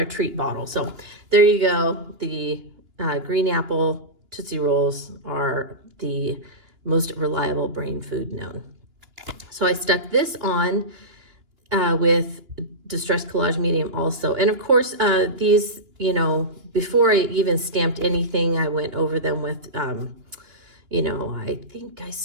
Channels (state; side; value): late; left; 2.9 ms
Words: treat bottle. So there you go. The green apple Tootsie Rolls are the most reliable brain food known. So I stuck this on with Distress Collage Medium also. And of course, these, you know, before I even stamped anything, I went over them with, you know, I think I